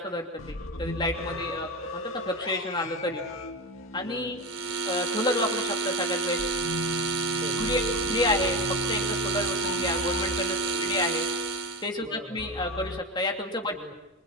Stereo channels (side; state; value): both; normal; correlation 0.20